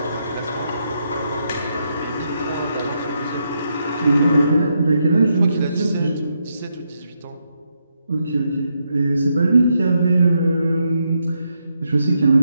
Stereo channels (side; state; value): both; inverted; correlation -0.81